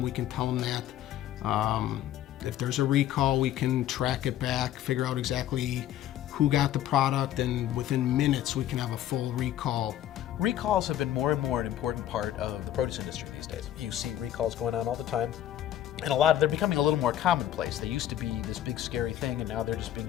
We can tell them that. If there's a recall, we can track it back, figure out exactly who got the product, and within minutes we can have a full recall. Recalls have been more and more an important part of the produce industry these days. You see recalls going on all the time. And they're becoming a little more commonplace. They used to be this big scary thing, and now they're just being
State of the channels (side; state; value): right; quieter; 12.0 dB